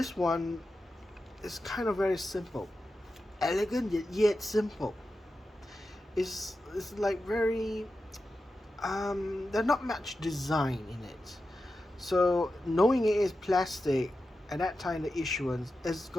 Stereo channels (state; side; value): normal; both; correlation 0.91